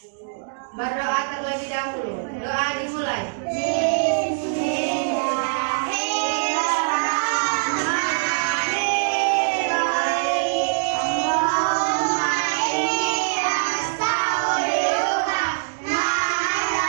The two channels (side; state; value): left; silent; digital silence